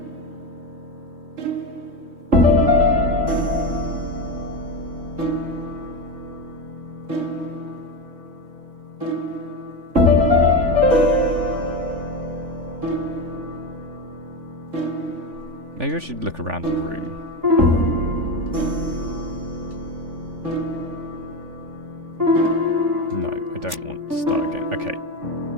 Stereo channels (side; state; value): left; late; 3.5 ms